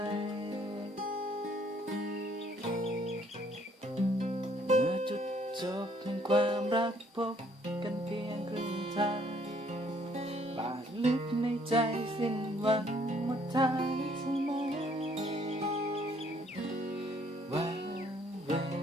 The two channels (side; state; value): both; normal; correlation 0.64